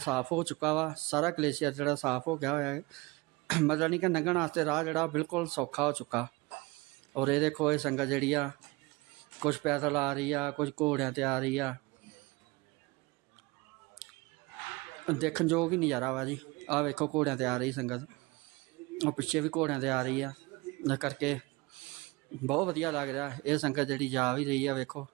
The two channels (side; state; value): left; quieter; 23.9 dB